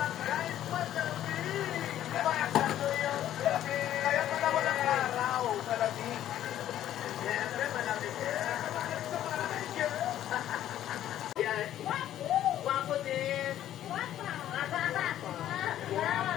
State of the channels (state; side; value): quieter; right; 12.0 dB